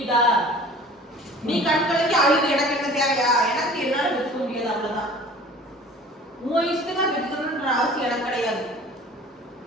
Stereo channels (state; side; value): normal; both; correlation 0.46